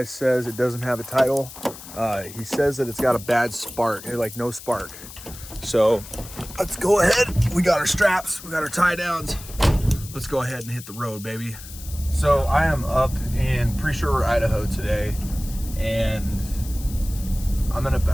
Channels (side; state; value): left; noise; hiss, 15 dB below the sound